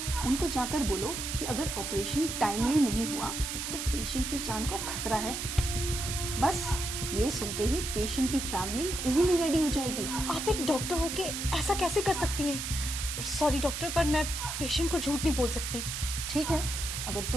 उनको जाकर बोलो कि अगर ऑपरेशन टाइमली नहीं हुआ तो पेशेंट की जान को खतरा है। बस ये सुनते ही पेशेंट की फैमिली इजीली रेडी हो जाएगी। आप एक डॉक्टर होके ऐसा कैसे कर सकती हैं? सॉरी डॉक्टर, पर मैं पेशेंट को झूठ नहीं बोल सकती। ठीक है, अगर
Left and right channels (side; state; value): right; noise; hiss, 4 dB below the sound